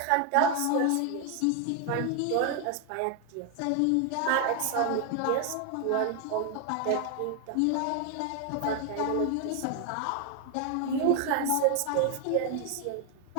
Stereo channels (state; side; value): different; both; correlation 0.01